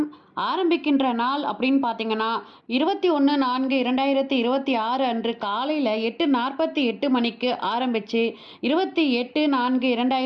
ஆரம்பிக்கின்ற நாள் அப்படின்னு பார்த்தீங்கன்னா 21/4/2026 அன்று காலையில் 8:48 மணிக்கு ஆரம்பித்து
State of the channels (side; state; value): both; identical; correlation 1.00